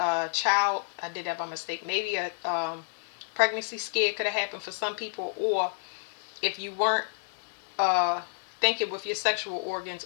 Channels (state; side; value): silent; right; digital silence